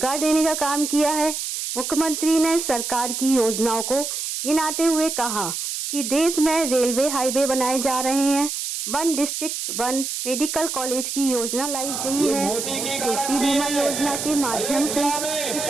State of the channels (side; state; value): right; noise; hiss, 4 dB below the sound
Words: देने का काम किया है। मुख्यमंत्री ने सरकार की योजनाओं को गिनाते हुए कहा कि देश में रेलवे हाईवे बनाए जा रहे हैं, 1 डिस्ट्रिक्ट 1 मेडिकल कॉलेज की योजना लाई गई है, कृषि बीमा योजना के माध्यम से